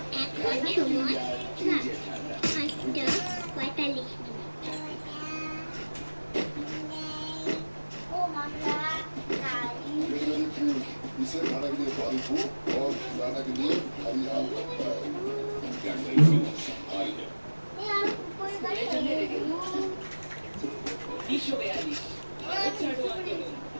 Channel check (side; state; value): both; inverted; correlation -1.00